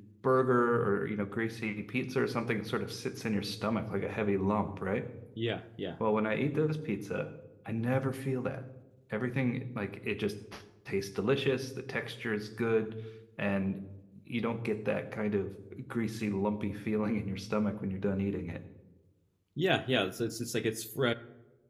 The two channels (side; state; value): both; identical; correlation 1.00